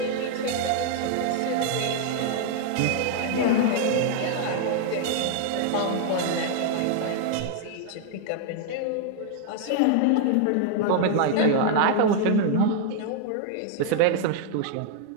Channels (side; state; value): both; different; correlation 0.00